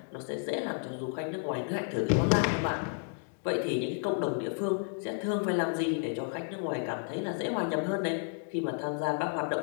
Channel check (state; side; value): silent; right; 57 dB below the other